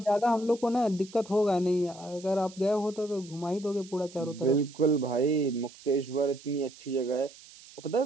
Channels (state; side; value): noise; right; hiss, 20 dB below the sound